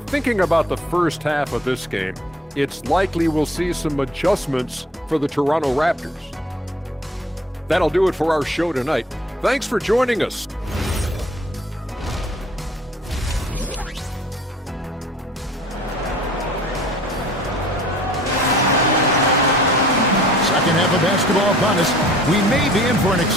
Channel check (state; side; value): normal; both; correlation 0.53